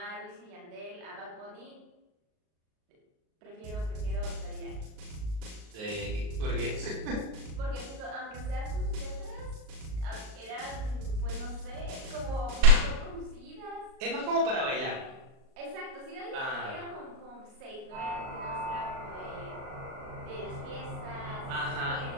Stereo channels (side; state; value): left; late; 38 ms